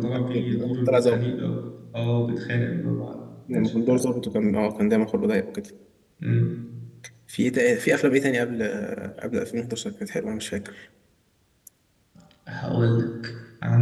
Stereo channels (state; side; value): identical; both; correlation 1.00